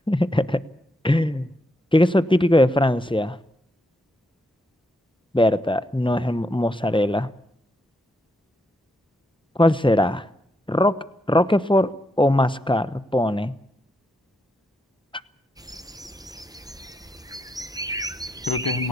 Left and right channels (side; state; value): both; normal; correlation 0.80